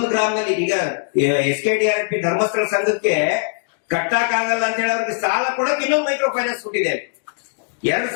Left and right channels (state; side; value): silent; right; digital silence